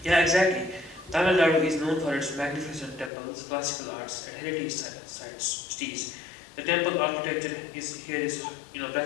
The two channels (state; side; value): drops out; right; at 3.1 s